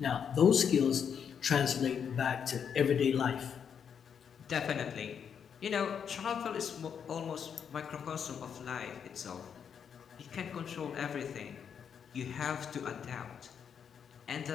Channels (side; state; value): right; quieter; 7.5 dB